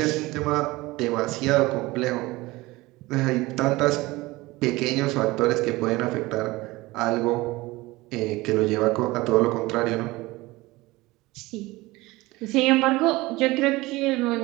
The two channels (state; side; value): quieter; left; 20.5 dB